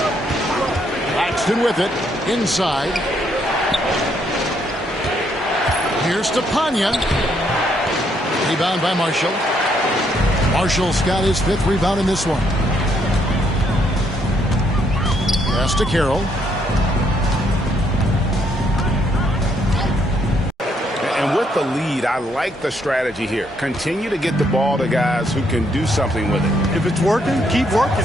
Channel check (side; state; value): both; normal; correlation 0.72